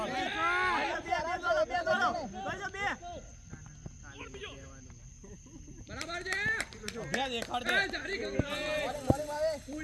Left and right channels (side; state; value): both; identical; correlation 1.00